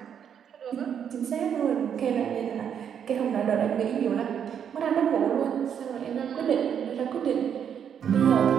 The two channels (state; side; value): quieter; left; 8.3 dB